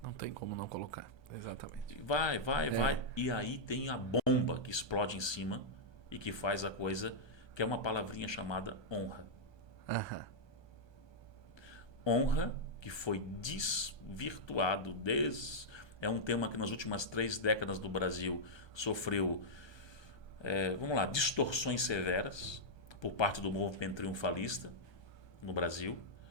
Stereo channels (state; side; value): late; right; 1.3 ms